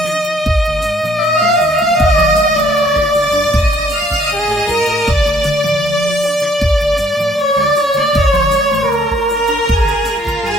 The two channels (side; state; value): both; normal; correlation 0.62